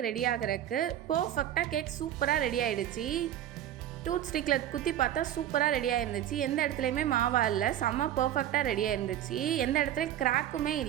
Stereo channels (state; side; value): quieter; left; 11.5 dB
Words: ரெடி ஆகிறதுக்கு. பர்ஃபெக்டாக கேக் சூப்பராக ரெடி ஆகிடுச்சு. டூத் ஸ்டிக்கில் குத்தி பார்த்தா சூப்பராக ரெடியாக இருந்துச்சு. எந்த இடத்துலையுமே மாவா இல்லை, செம்ம பர்ஃபெக்டாக ரெடியாக இருந்துச்சு. எந்த இடத்துலையும் கிராக்குமே